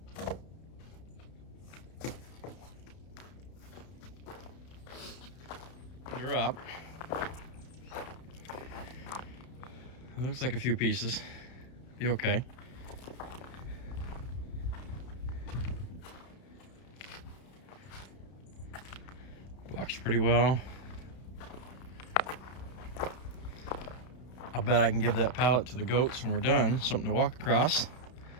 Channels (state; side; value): late; right; 32 ms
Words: Let's get her up. It looks like a few pieces. Be okay. Walks pretty well. I bet I can give that pallet to the goats when we're done. Something to walk across.